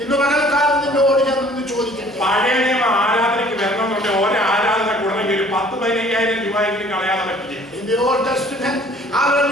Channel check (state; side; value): normal; both; correlation 0.54